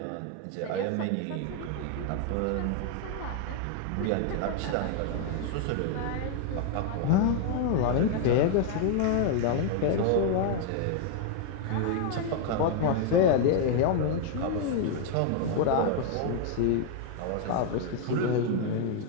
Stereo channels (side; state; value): both; different; correlation 0.00